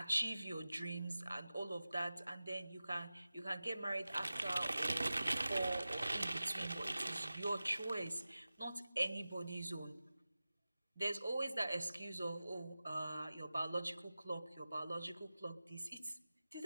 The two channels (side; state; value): both; inverted; correlation -0.95